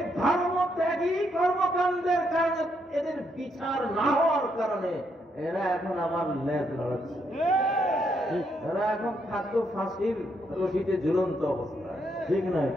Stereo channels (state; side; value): normal; both; correlation 0.76